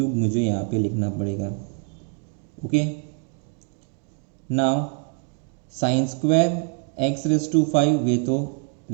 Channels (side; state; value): left; quieter; 37.2 dB